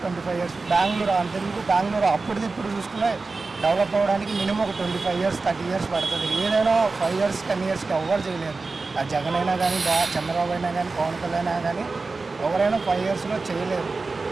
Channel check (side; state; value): left; quieter; 3.9 dB